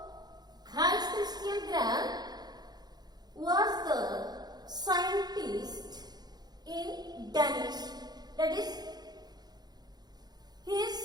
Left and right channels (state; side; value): late; left; 0.20 ms